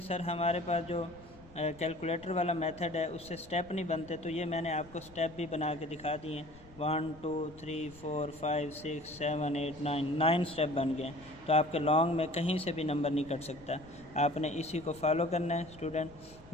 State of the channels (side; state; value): left; noise; rumble, 22 dB below the sound